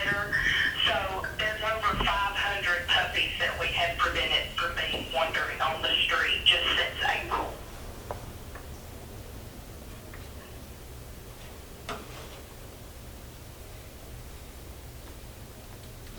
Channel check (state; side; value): identical; both; correlation 1.00